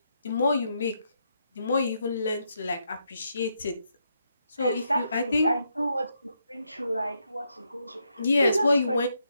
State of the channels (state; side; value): inverted; both; correlation -0.79